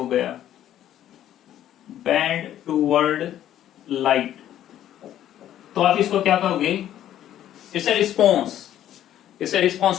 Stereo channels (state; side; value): quieter; right; 11.7 dB